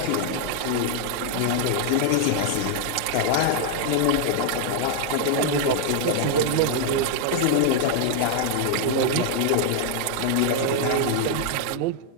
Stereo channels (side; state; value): both; different; correlation 0.00